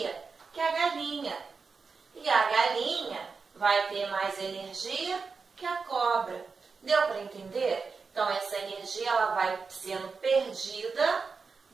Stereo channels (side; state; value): left; quieter; 4.9 dB